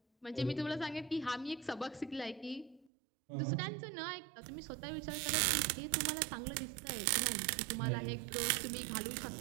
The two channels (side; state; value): left; drops out; at 2.9 s